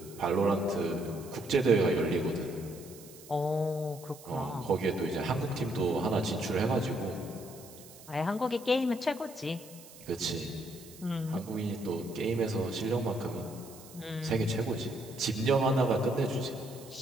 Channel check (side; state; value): right; noise; hiss, 19 dB below the sound